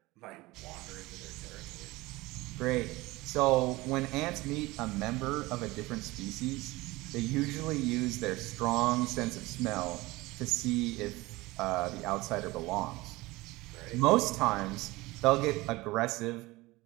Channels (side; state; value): left; quieter; 20.8 dB